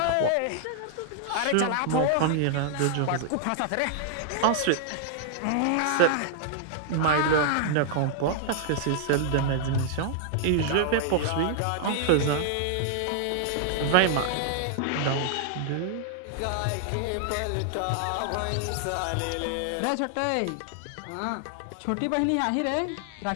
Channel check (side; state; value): both; different; correlation -0.01